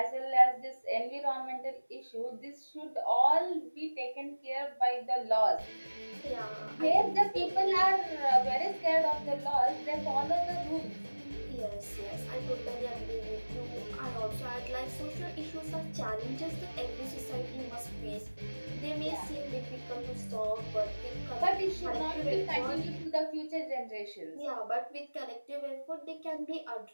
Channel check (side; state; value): both; inverted; correlation -1.00